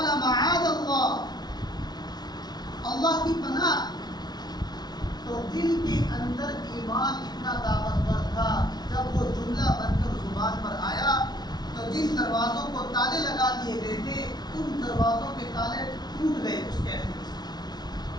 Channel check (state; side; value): late; right; 0.19 ms